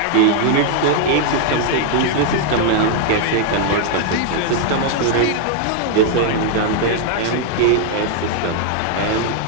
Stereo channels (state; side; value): different; both; correlation 0.00